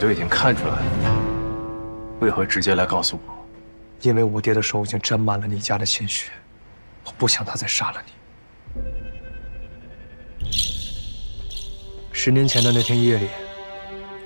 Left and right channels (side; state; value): both; inverted; correlation -1.00